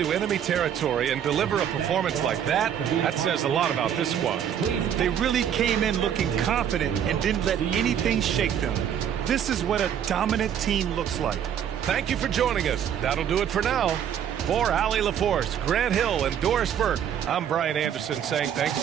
enemy territory and deliver a performance like that says a lot about this squad. They really came in looking confident and didn't let anything shake them. This is what a dominant team looks like. Thank you for joining us. That'll do it for now. For Allie LaForce, Grant Hill, and Doris Burke, I'm Brian Anderson saying thanks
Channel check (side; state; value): left; quieter; 9.1 dB